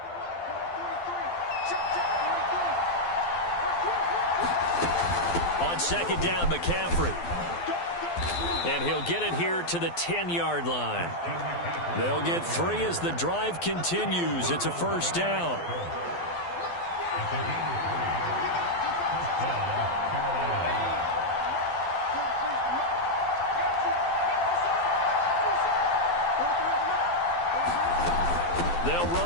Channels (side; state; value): right; late; 12 ms